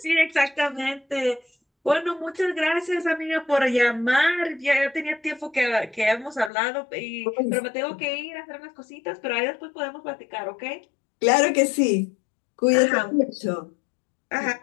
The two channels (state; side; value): drops out; right; at 6.5 s